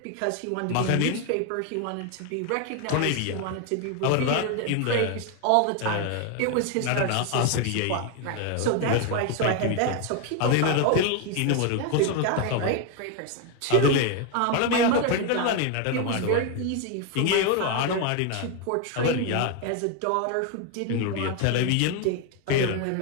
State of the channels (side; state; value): both; different; correlation 0.01